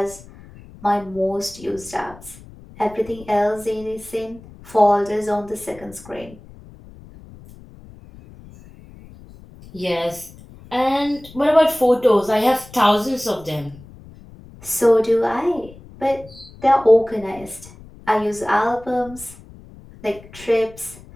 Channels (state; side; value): noise; left; rumble, 20 dB below the sound